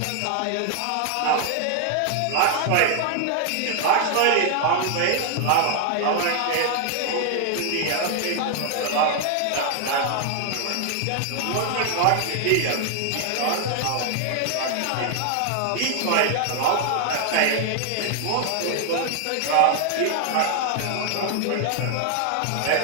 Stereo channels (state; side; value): different; both; correlation 0.00